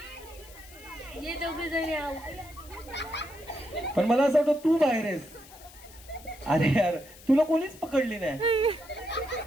पण मला असं वाटतं तू बाहेर आहेस. अरे यार तुला कोणीच पकडली नाही.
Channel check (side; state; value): left; noise; hiss, 20 dB below the sound